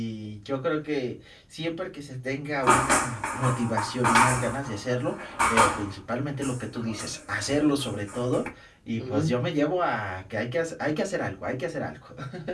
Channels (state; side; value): identical; both; correlation 1.00